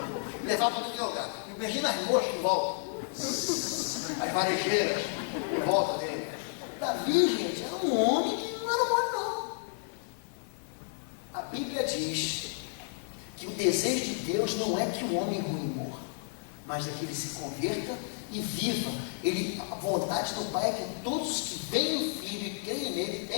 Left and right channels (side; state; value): right; silent; digital silence